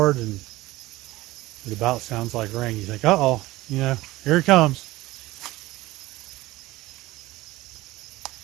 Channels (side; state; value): left; quieter; 18.4 dB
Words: and it about sounds like rain. You think, uh-oh, you know, here it comes.